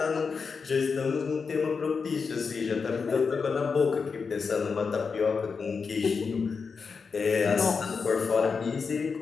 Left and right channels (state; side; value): quieter; right; 5.3 dB